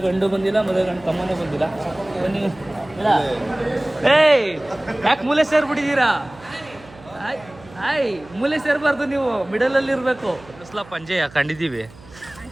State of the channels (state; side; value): noise; right; hum, 22 dB below the sound